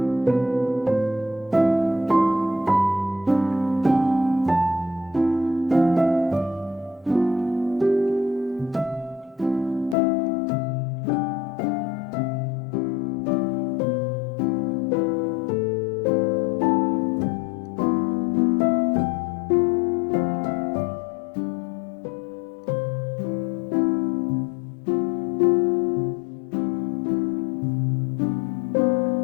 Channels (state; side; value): drops out; right; at 10.0 s